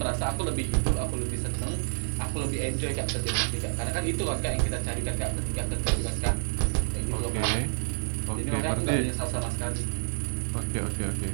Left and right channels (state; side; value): silent; left; 59 dB below the other